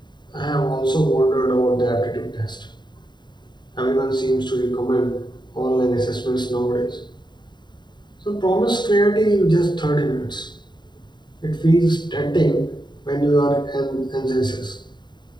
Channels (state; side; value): late; right; 0.21 ms